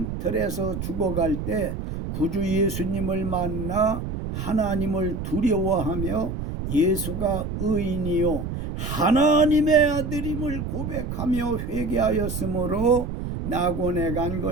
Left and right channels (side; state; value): right; noise; rumble, 5 dB below the sound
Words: 죽어갈 때 구주 예수님을 만나 하나님을 두려워하며 예수가 의인이요 하나님의 아들임을 고백하며 회개하였으므로 낙원에 간